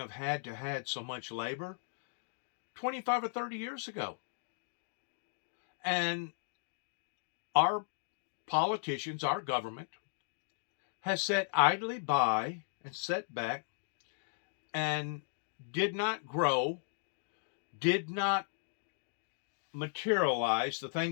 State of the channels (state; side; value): silent; right; digital silence